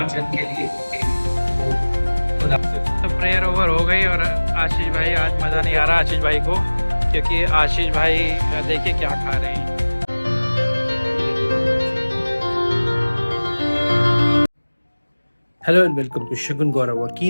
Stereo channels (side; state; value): both; inverted; correlation -1.00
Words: के लिए। तो प्रेयर ओवर हो गई और आशीष भाई, आज मज़ा नहीं आ रहा आशीष भाई को, क्योंकि आशीष भाई देखिए क्या खा रहे हैं। हेलो एंड वेलकम टू शगुन गौरव और